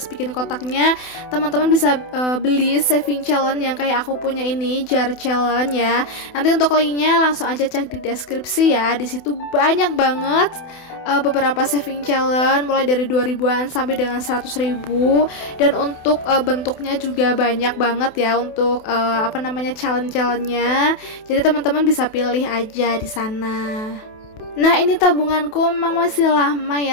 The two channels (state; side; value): late; right; 28 ms